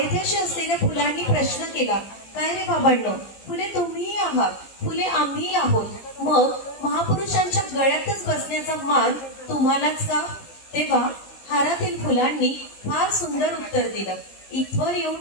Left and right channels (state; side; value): late; right; 16 ms